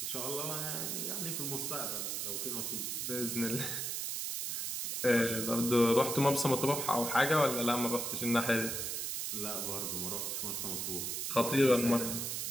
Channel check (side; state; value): right; noise; hiss, 2 dB below the sound